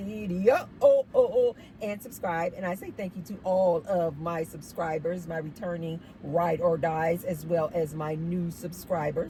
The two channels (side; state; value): both; identical; correlation 1.00